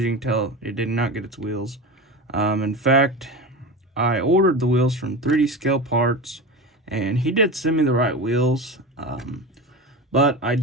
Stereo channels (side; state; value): both; normal; correlation 0.27